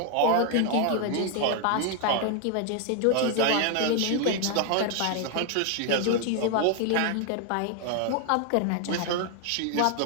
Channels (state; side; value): different; both; correlation 0.00